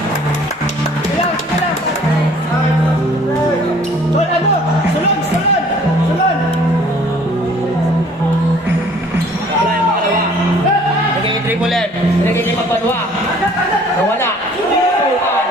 Tol, ano? Salon! Salon! Salon! Wala yung pangalawa. Naging triple M. Naging pagkadwa. Nawala. Tukan.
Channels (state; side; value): normal; both; correlation 0.54